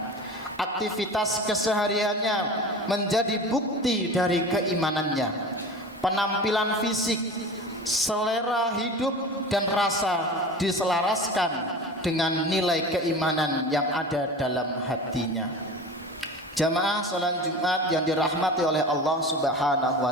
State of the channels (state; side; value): normal; both; correlation 0.34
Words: Aktivitas kesehariannya menjadi bukti dari keimanannya. Penampilan fisik, selera hidup dan rasa diselaraskan dengan nilai keimanan yang ada dalam hatinya. Jamaah salat Jumat yang dirahmati oleh Allah Subhanahu